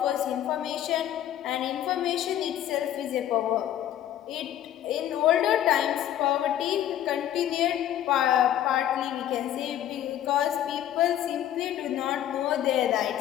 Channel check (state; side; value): quieter; right; 11.5 dB